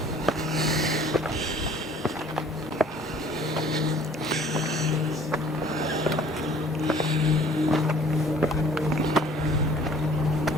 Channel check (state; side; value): normal; both; correlation 0.53